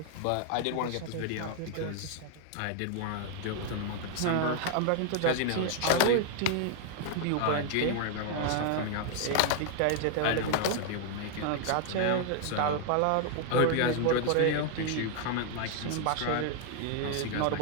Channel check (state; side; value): different; both; correlation 0.00